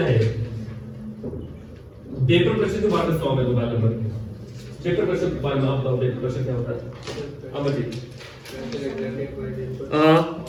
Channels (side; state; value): both; identical; correlation 1.00